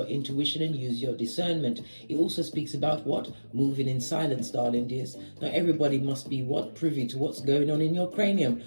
intuition and use your discernment. It also speaks about what? Moving in silence, darling dears. Not everybody must be what? Privy to what's going on in your cranium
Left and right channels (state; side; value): inverted; both; correlation -1.00